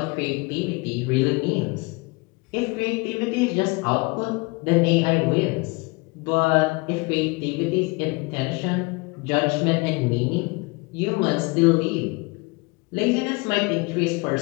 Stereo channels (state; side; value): quieter; right; 27.1 dB